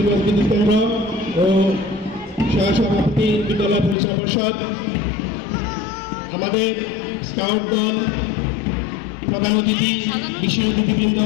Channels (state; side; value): drops out; right; at 4.0 s